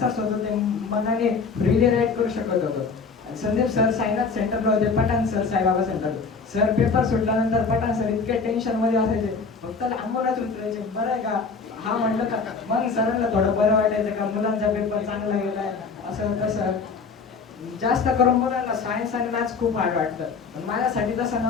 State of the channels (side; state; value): right; quieter; 4.9 dB